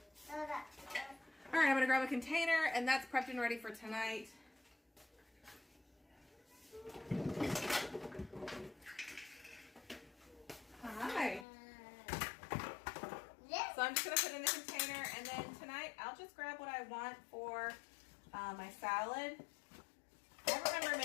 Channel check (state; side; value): drops out; right; at 11.5 s